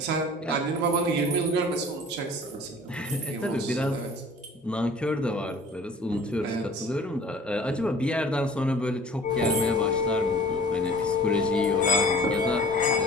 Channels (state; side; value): normal; both; correlation 0.47